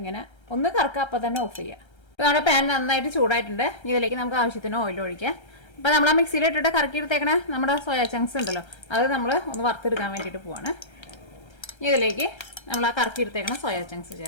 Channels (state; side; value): late; right; 1.3 ms